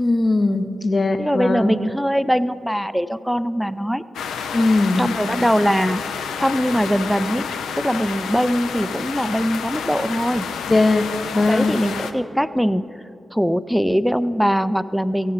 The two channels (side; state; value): both; normal; correlation 0.96